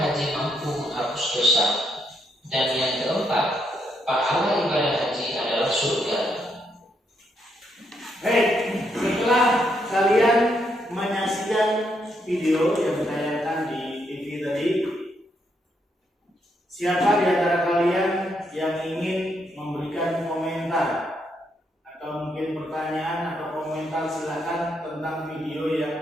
haji mampu menghapus dosa. Dan yang keempat, pahala ibadah haji adalah surga. Baik, setelah kalian menyaksikan video yang ditayangkan di TV tadi, siapa di antara kalian yang ingin memberikan komentar atau mungkin pertanyaan atau komentar, silakan, tentang video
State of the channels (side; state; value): both; normal; correlation 0.77